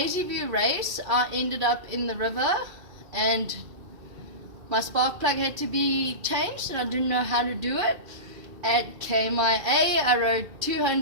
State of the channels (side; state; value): left; late; 2.4 ms